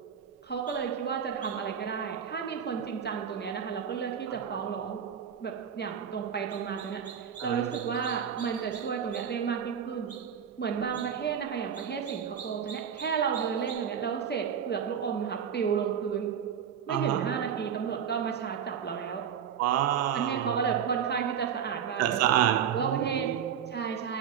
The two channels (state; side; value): quieter; left; 8.0 dB